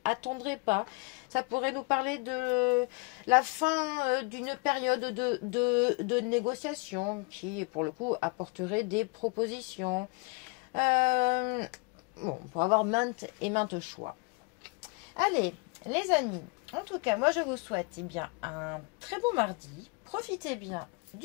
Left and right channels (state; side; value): quieter; right; 29.8 dB